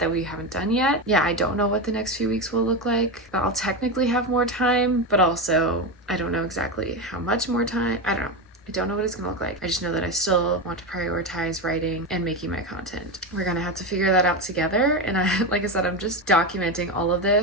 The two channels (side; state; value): both; normal; correlation 0.16